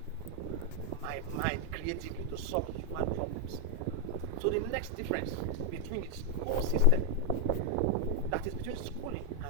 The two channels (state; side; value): different; both; correlation 0.00